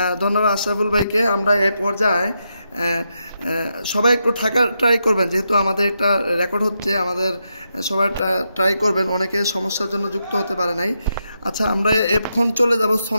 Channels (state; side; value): inverted; both; correlation -0.84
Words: ধন্যবাদ আশরাফুল ভাইকে। আমরা এই পর্যায়ে সবাই একটু থাকার ট্রাই করবেন, যেহেতু আমাদের একটা রেকর্ড হচ্ছে, আমাদের সবাই ট্রাই করবেন, অনেকে সমস্যার জন্য যুক্ত হতে পারে নাই। আচ্ছা, আমরা এখন চলে যাব